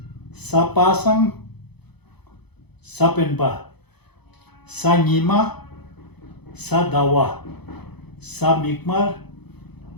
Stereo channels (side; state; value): right; late; 0.98 ms